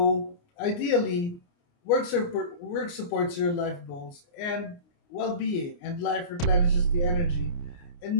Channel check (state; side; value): late; right; 29 ms